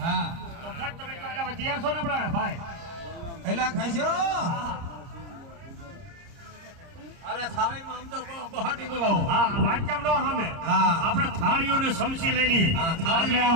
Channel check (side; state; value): left; late; 30 ms